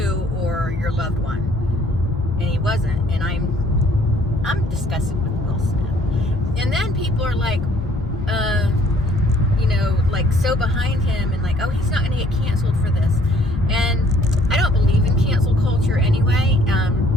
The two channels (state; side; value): normal; both; correlation 0.61